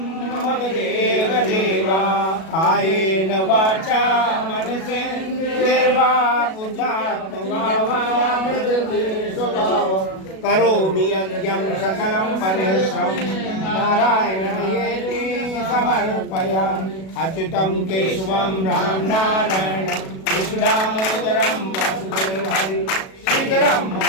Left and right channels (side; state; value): right; late; 37 ms